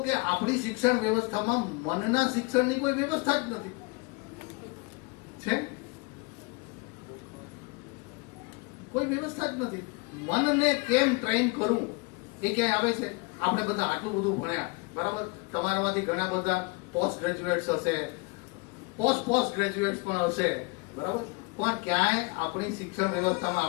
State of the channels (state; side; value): quieter; right; 28.7 dB